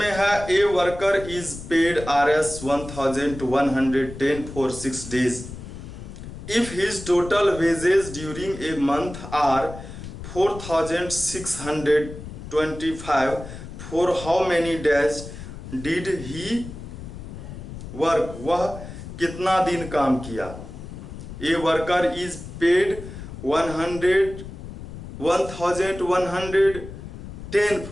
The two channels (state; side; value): noise; left; rumble, 11 dB below the sound